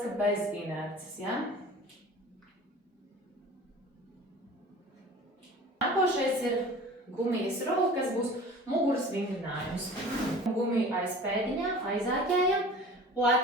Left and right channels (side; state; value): both; normal; correlation 0.42